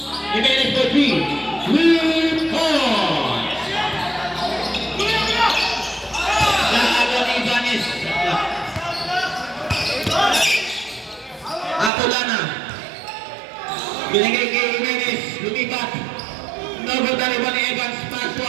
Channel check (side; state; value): left; drops out; at 11.9 s